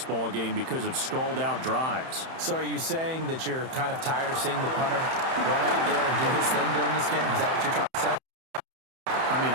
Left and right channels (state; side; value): late; left; 31 ms